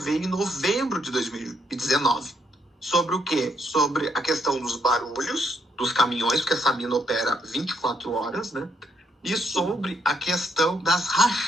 em novembro de 2019. Sobre o quê? Sobre a questão dos barulhos dos caminhões, porque essa mina opera 24 horas, né? E sobre a questão das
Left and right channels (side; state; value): both; normal; correlation 0.74